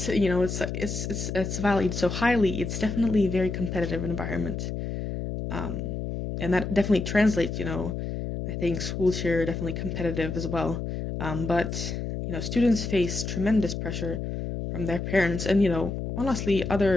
valued so highly, it's definitely a very competitive environment, um, and that definitely translates. I think schools here are definitely competitive as well, but students face tremendous pressure from their parents, and honestly,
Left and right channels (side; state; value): left; noise; hum, 4 dB below the sound